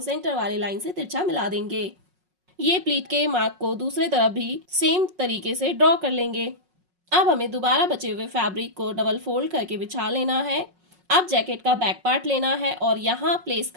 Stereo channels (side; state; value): left; late; 5.5 ms